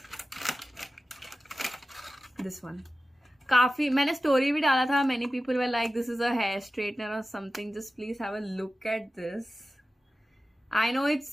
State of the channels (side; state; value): both; normal; correlation 0.94